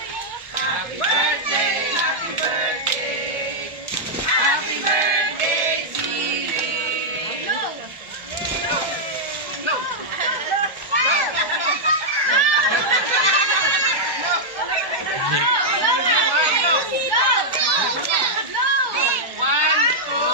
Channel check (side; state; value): left; late; 1.1 ms